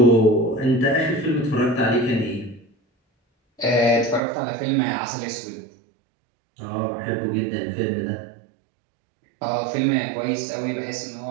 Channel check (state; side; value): drops out; left; at 4.2 s